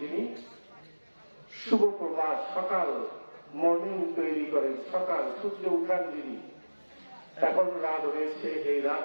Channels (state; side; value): inverted; both; correlation -1.00